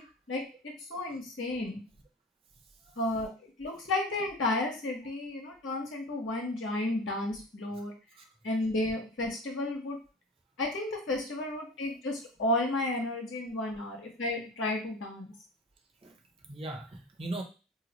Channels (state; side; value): normal; both; correlation 0.33